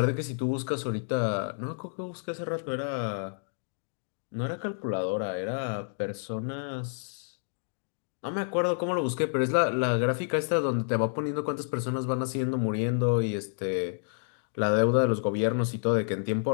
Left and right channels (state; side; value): silent; right; digital silence